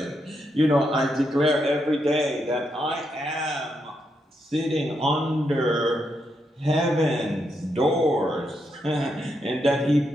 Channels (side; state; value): both; normal; correlation 0.81